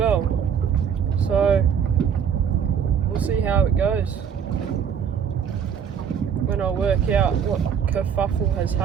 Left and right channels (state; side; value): quieter; left; 7.6 dB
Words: so we'll see how it goes when I work out what kerfuffle has